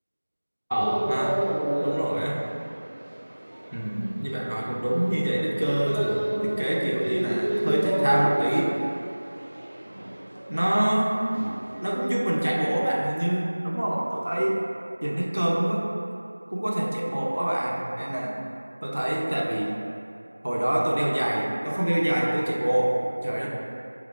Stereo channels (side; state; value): both; inverted; correlation -1.00